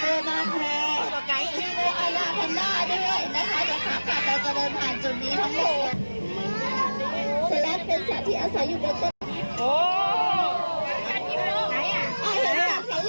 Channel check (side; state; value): both; inverted; correlation -1.00